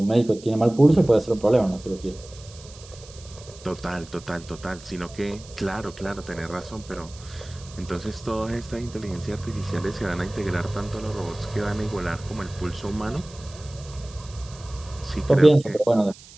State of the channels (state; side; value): noise; right; hiss, 20 dB below the sound